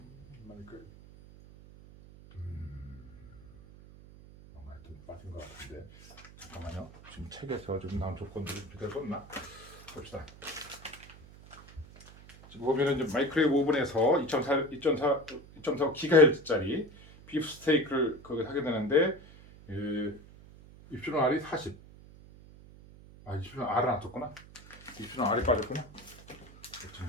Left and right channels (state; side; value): noise; right; hum, 20 dB below the sound